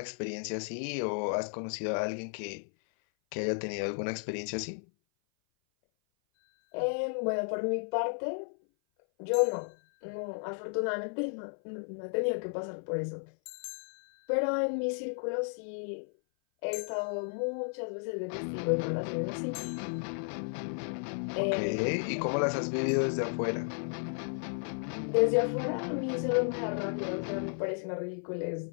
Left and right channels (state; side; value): silent; right; 55 dB below the other